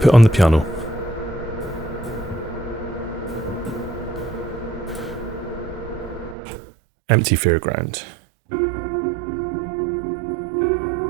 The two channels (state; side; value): drops out; left; at 6.4 s